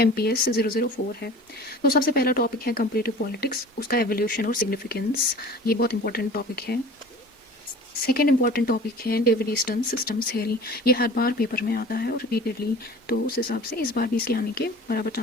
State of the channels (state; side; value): normal; both; correlation 0.42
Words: 004 है। तो सबसे पहला टॉपिक है कंपैरेटिव पॉलिटिक्स, उसका एवोल्यूशन और सिग्निफिकेंस। ये बहुत इंपॉर्टेंट टॉपिक है। सेकेंड इंपॉर्टेंट टॉपिक है डेविड ईस्टर्न सिस्टम्स थ्योरी। ये हर बार पेपर में आता है और रिपीटेडली, तो उस हिसाब से इस बार भी इसके आने के बराबर